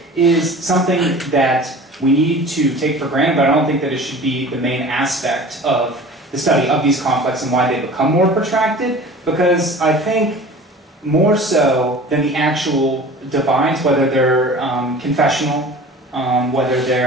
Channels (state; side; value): normal; both; correlation 0.41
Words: is something that we need to take for granted, but I don't think that it should be the main aspect of the study of these conflicts and why they become more protracted, because I think more so than the actual divides, whether they're confessional, whether